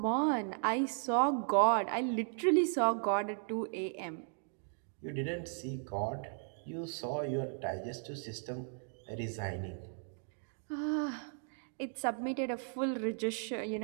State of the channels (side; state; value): left; silent; 54 dB below the other